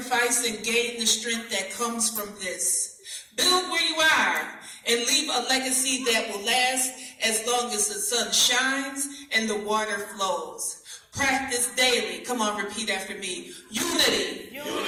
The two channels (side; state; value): both; identical; correlation 1.00